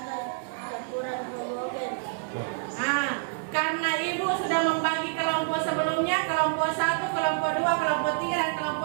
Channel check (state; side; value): silent; left; 60 dB below the other